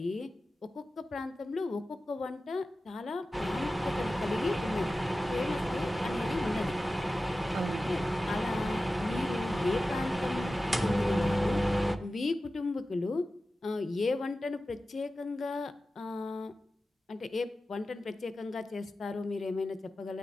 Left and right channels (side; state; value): both; normal; correlation 0.94